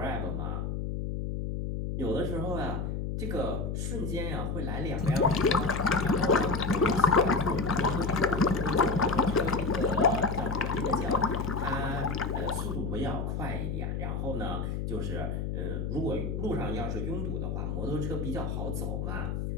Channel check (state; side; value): noise; left; hum, 2 dB below the sound